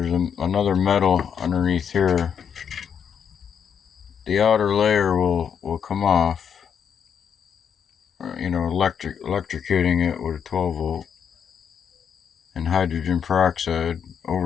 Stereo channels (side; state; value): right; quieter; 7.6 dB